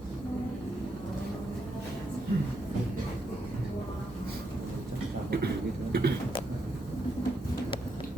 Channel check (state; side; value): normal; both; correlation 0.80